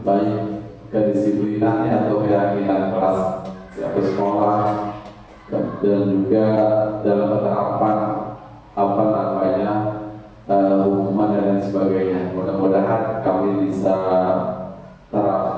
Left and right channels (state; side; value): identical; both; correlation 1.00